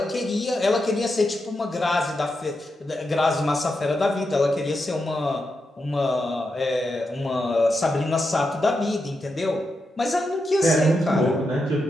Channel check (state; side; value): normal; both; correlation 0.86